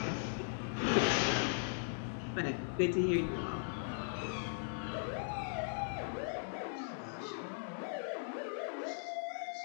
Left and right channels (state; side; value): silent; right; digital silence